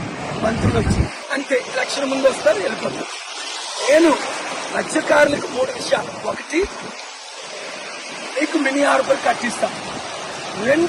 మంత్రులు వచ్చి అంతే ఎలక్షన్ ముందు వస్తారు, వెళ్ళిపోతారు. నేను మత్స్యకారులకు 3 విషయాలు: 1, మీకు మినీ హార్బర్ కట్టిస్తాం.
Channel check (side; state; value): both; identical; correlation 1.00